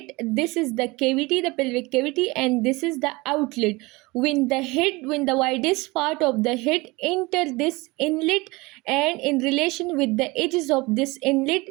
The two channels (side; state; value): left; quieter; 23.4 dB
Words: This is the cavity, the pelvic cavity, and this is the outlet. When the widest part of the head enter this inlet, and in relation with the edges of this inlet,